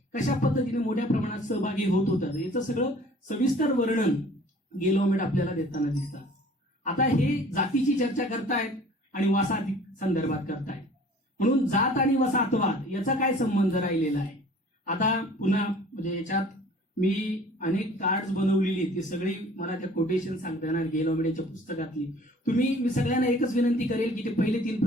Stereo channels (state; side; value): normal; both; correlation 0.50